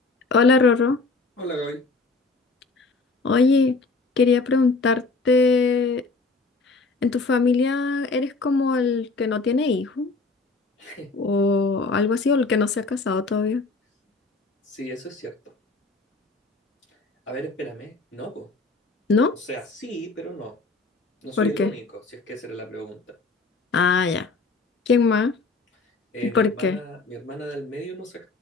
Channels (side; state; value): right; quieter; 3.8 dB